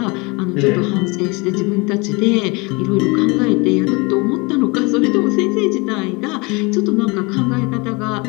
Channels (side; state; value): right; quieter; 27.3 dB